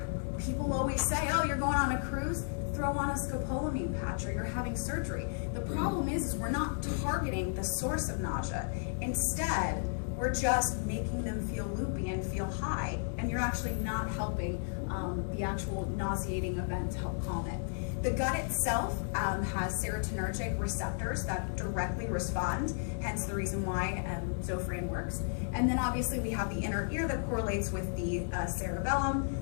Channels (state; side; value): silent; right; digital silence